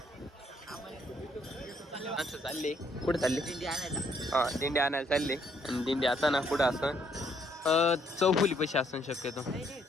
असं चालले कुठे चालले? दिंडी आणायला. हा दिंडी आणायला चालले. आणि दिंडी आता ना कुठं असं चौफुली पैसे असून शक्यतो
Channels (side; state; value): both; normal; correlation 0.69